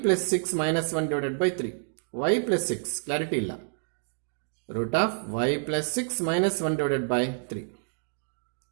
6 minus 1 divided by 3. y plus 6 clarity ಇಲ್ಲ. Root of y plus 6 minus 1 divided by 3.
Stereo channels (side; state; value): left; silent; digital silence